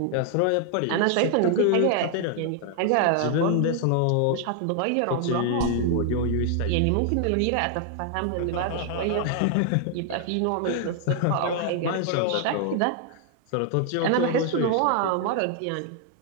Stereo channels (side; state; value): both; different; correlation 0.00